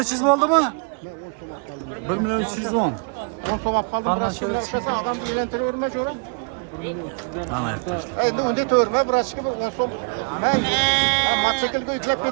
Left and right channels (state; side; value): quieter; left; 39.0 dB